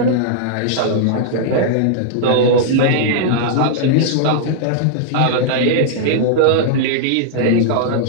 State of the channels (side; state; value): both; different; correlation -0.01